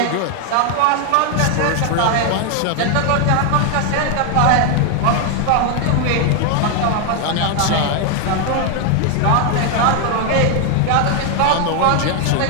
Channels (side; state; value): both; different; correlation 0.01